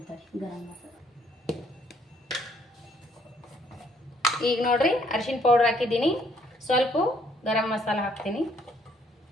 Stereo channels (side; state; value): both; normal; correlation 0.66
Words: ಗರಂ ಮಸಾಲ. ಈಗ ನೋಡ್ರಿ, ಅರಿಶಿಣ ಪೌಡ್ರ್ ಹಾಕಿದ್ದೀನಿ, ಸ್ವಲ್ಪ ಗರಂ ಮಸಾಲ ಹಾಕ್ತೀನಿ,